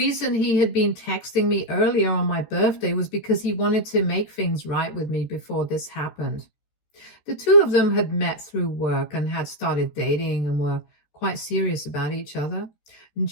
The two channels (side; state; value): right; late; 14 ms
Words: he had been texting me earlier on my birthday was because he wanted to make things right with me before this happened. The two of them had met through work and had started dating and were quite serious about each other. And